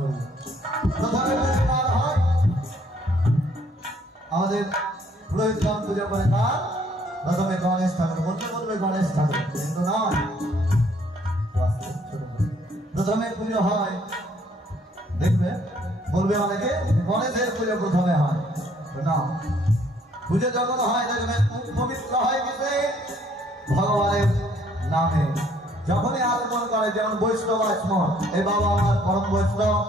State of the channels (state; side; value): normal; both; correlation 0.63